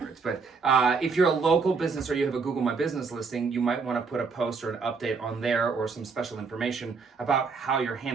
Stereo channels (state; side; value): quieter; left; 4.9 dB